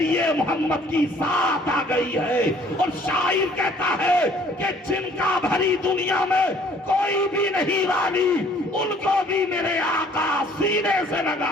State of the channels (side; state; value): both; normal; correlation 0.57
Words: محمد کی ذات آ گئی ہے۔ اور شاعر کہتا ہے کہ جن کا بھری دنیا میں کوئی بھی نہیں والی، ان کو بھی میرے آقا سینے سے